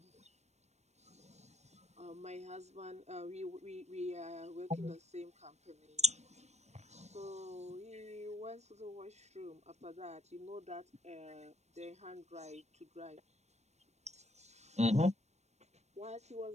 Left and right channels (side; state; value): left; late; 0.32 ms